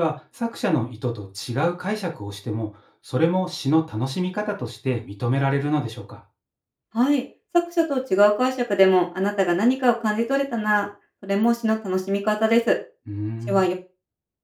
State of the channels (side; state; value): both; identical; correlation 1.00